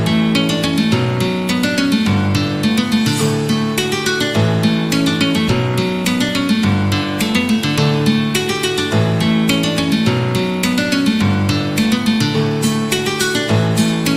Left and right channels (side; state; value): both; identical; correlation 1.00